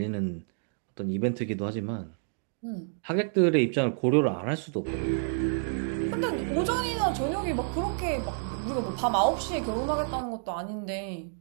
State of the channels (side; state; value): left; silent; digital silence